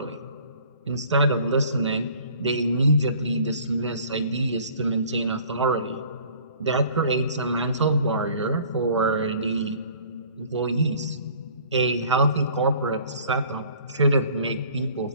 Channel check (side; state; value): both; inverted; correlation -0.52